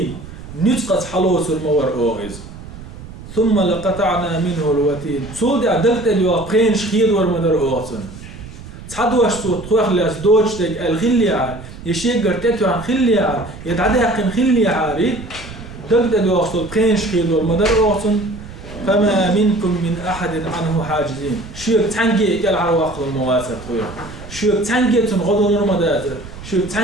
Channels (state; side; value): noise; right; rumble, 14 dB below the sound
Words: نتقط حلوس المور أوغز ثم لقطعنا منه الوتين صود عدلت اليوقين شخير ورمدر أوغسن تحدوش صوت خوخ لاس دوجتك الخليعة يشيقر تتو عن خليعة يتعدي حقن خليعة دلت اليوقين قين شخير ورمدر أوغسن فما منكم من أحد عنه حاجزين شوك تنجي إكال عرواق المواسر خويا شوك تنجي تنغضل المداتر شوك